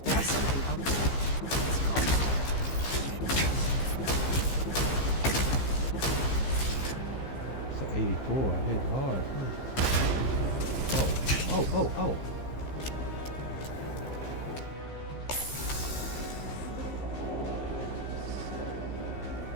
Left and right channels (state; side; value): late; right; 15 ms